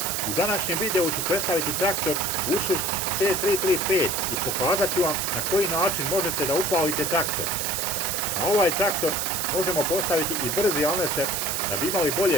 U današnjem videu ću predstaviti traktor Ursus C335 i pokazat ću vam na koji način možete da upalite traktor. Na ovaj traktor možemo postaviti i brzi alneser da bi imali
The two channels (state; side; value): noise; right; hiss, 1 dB below the sound